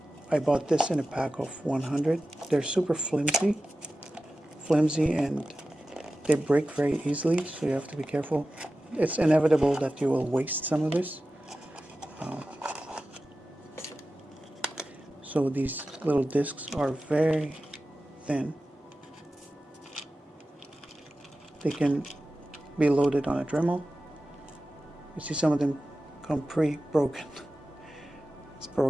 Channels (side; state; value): both; normal; correlation 0.94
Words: I bought this in a pack of 100. They're super flimsy and they break very easily, so you have to be careful. It's inevitable that you will waste some of this. So these little discs are very thin. They can be loaded on a Dremel. You see some of them come pre-broken. It's